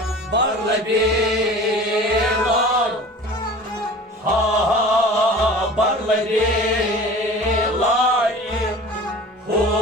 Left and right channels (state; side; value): normal; both; correlation 0.41